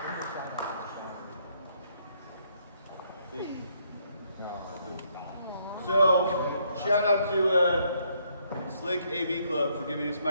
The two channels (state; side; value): inverted; both; correlation -0.71